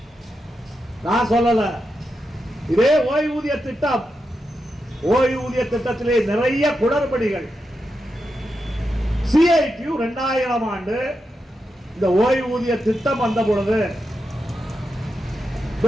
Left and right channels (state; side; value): normal; both; correlation 0.87